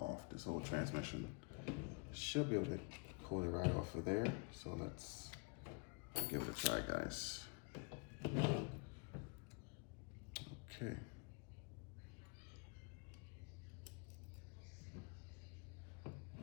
this whole transmission. Should be able to pull it right off of there. So let's give it a try, guys. Okay.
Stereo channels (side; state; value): right; quieter; 31.2 dB